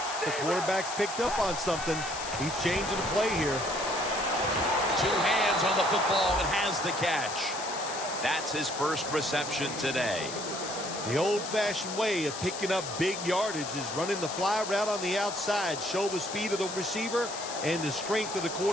The quarterback's picked up on something. He's changing the play here. Two hands on the football and has the catch. That's his first reception today. The old-fashioned way of picking up big yardage is running the fly route on the outside. Show the speed of the receiver and the strength of the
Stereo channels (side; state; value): left; noise; hiss, 8 dB below the sound